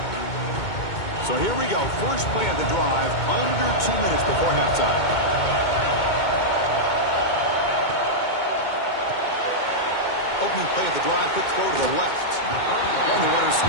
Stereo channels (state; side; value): late; right; 2.2 ms